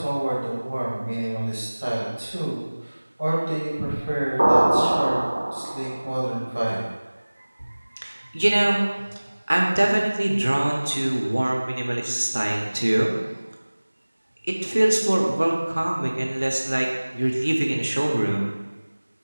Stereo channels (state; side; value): inverted; both; correlation -1.00